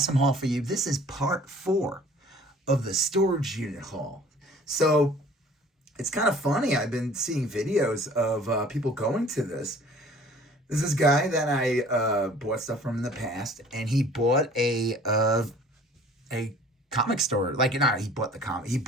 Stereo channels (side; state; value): both; normal; correlation 0.50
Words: haul for you. This is part 4 of the storage unit haul. So, it's kind of funny. I've been seeing videos of people going to this. There's this guy that I bought stuff from in the past, and he bought a comic store. He bought the comic. He